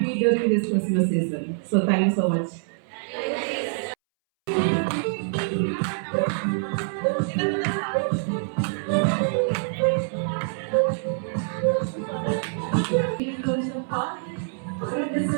during this Christmas season. So thank you so much.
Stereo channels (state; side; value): silent; left; 62 dB below the other